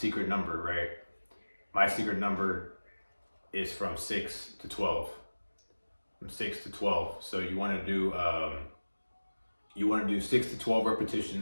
number, right? My secret number is from 6 to 12. From 6 to 12. So you want to do 6 to 12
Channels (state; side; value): inverted; both; correlation -1.00